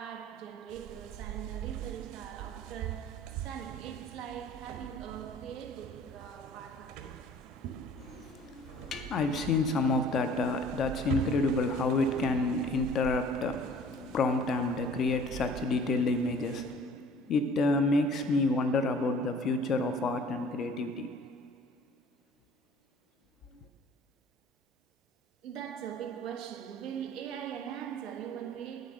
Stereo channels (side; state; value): both; normal; correlation 0.50